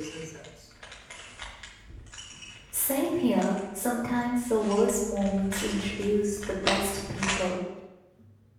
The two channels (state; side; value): identical; both; correlation 1.00